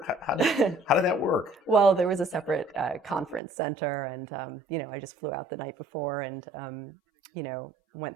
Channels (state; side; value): drops out; left; at 3.4 s